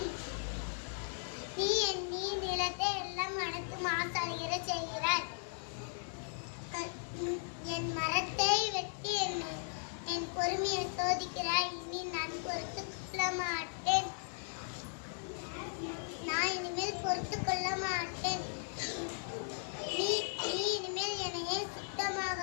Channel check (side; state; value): right; silent; digital silence